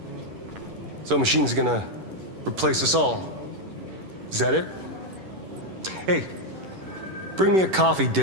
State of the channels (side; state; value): left; late; 11 ms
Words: So machine's gonna replace us all. Is that it? Hey, bring me a coffee,